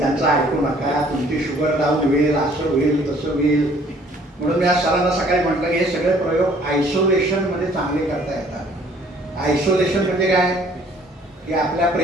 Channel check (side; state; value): both; normal; correlation 0.58